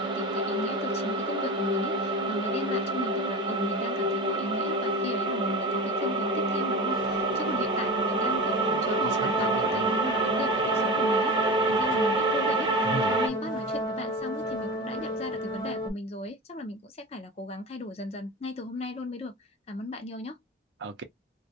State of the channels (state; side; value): normal; both; correlation 0.27